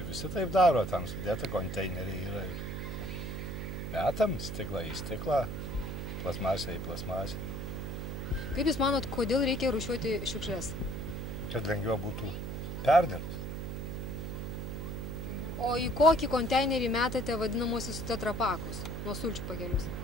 visi taip daro, tam sudėta konteineriai yra. Metam stiklą į stiklą, plasmasę į plasmasę. Kaip Jūs manot, kodėl reikia rūšiuoti šiukšlės? Kad lengviau būtų perdirbti. O į kokį konteinerį metate vadinamosius tetrapakus, nuo sulčių pakelius?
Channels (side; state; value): right; noise; hum, 5 dB below the sound